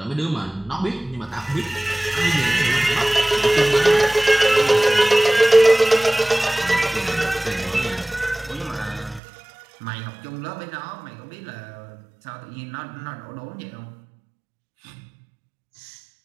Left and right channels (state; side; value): drops out; left; at 9.2 s